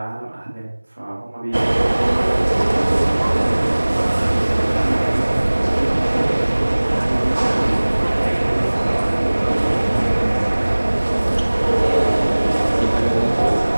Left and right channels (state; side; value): inverted; both; correlation -1.00